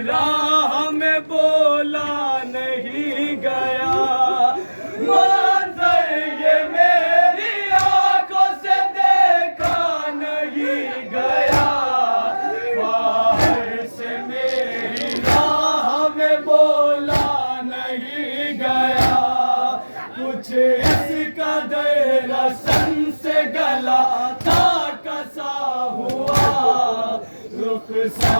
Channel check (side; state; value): both; inverted; correlation -1.00